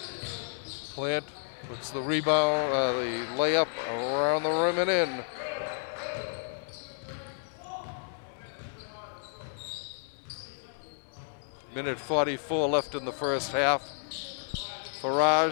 Plant gets the rebound, the layup around the rim and in. Minute 44 left in the first half.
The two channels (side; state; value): right; silent; digital silence